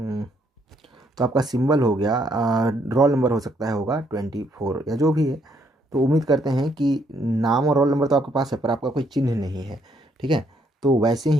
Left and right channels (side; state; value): both; normal; correlation 0.71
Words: तो आपका सिंबल हो गया, रोल नंबर हो सकता है होगा 24 या जो भी है। तो उम्मीद करते हैं कि नाम और रोल नंबर तो आपके पास है, पर आपका कोई चिन्ह नहीं है। ठीक है, तो वैसे